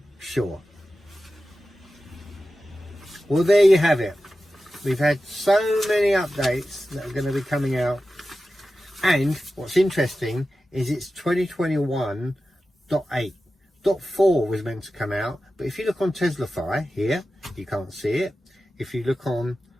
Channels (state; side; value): normal; both; correlation 0.93